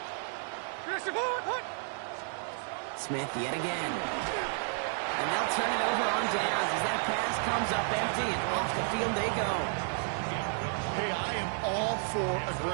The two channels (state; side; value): silent; left; 57 dB below the other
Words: Smith yet again. And they'll turn it over on downs as that pass comes up empty, and off the field they go. Hey, I am all for